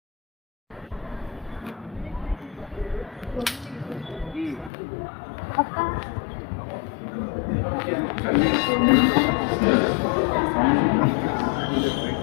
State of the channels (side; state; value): right; drops out; at 4.7 s